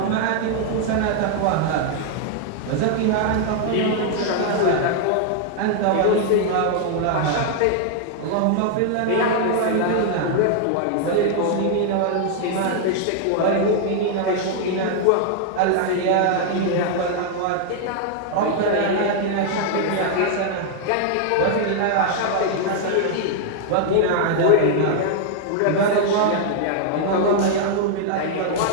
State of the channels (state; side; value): different; both; correlation 0.00